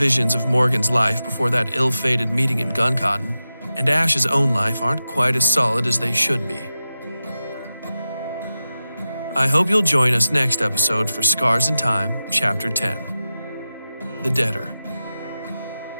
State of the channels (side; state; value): both; inverted; correlation -0.92